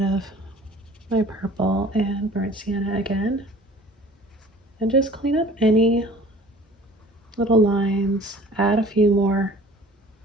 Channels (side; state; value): both; normal; correlation 0.48